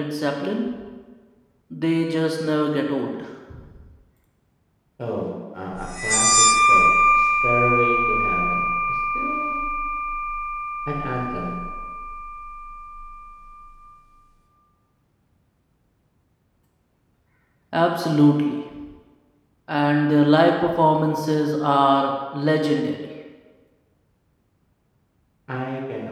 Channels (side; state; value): both; identical; correlation 1.00